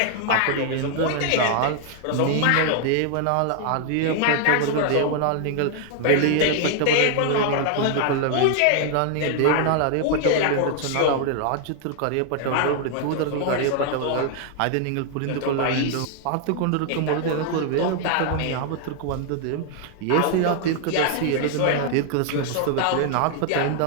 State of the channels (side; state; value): both; different; correlation 0.00